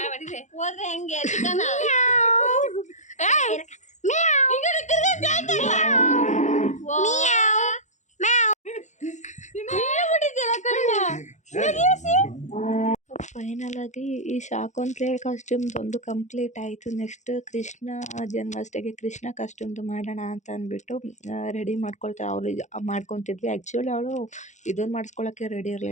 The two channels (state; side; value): late; right; 0.34 ms